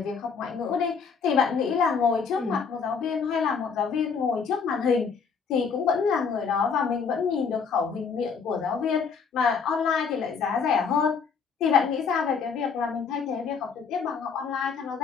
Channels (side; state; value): right; quieter; 5.8 dB